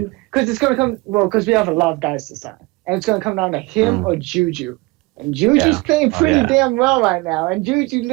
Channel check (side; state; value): left; quieter; 23.8 dB